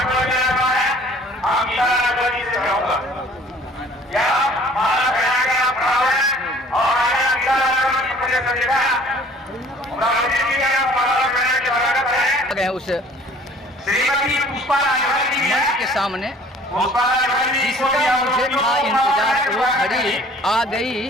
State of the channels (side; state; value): both; normal; correlation 0.52